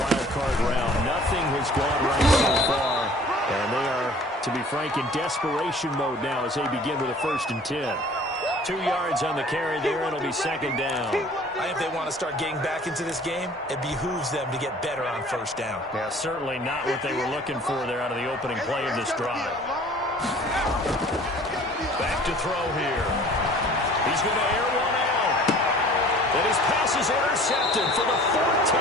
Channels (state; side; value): normal; both; correlation 0.49